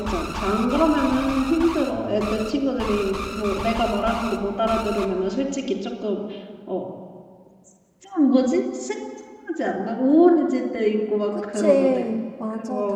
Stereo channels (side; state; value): both; identical; correlation 1.00